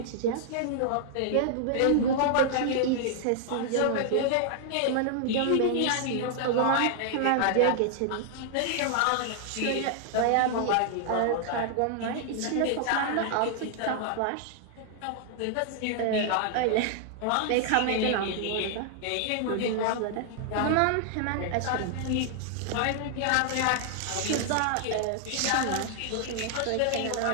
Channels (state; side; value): different; both; correlation -0.01